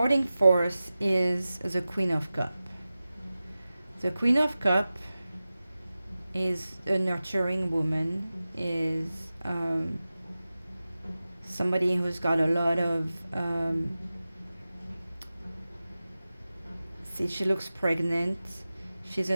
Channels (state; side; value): inverted; both; correlation -0.95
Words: force is the Queen of Cup. The Queen of Cup is a nurturing woman, is somebody who's got a lot of see, she looks pregnant. She's